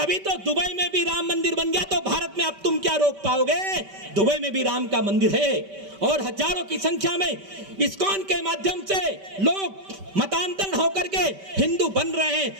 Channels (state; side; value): late; left; 5.1 ms